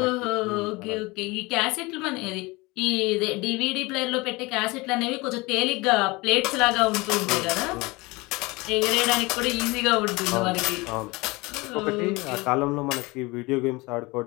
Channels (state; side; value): quieter; right; 23.9 dB